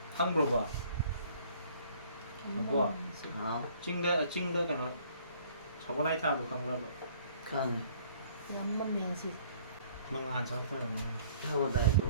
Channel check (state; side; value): inverted; both; correlation -0.58